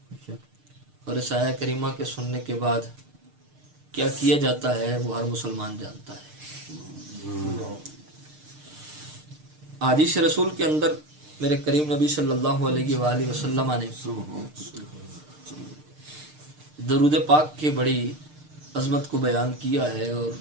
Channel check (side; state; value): left; late; 6.6 ms